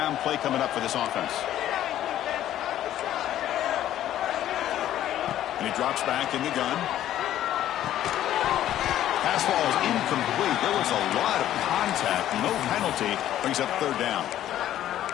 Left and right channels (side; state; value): right; quieter; 12.3 dB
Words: play coming up for this offense. And he drops back in the gun. Pass ball is incomplete. There was a lot of contact. No penalty. Brings up third down.